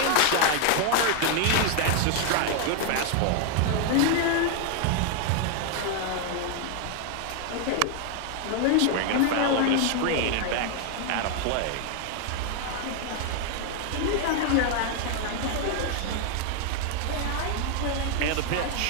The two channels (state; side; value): different; both; correlation 0.01